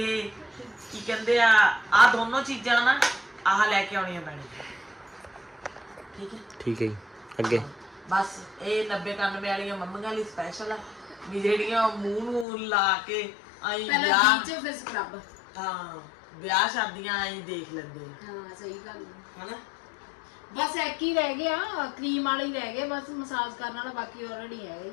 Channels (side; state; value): right; drops out; at 12.5 s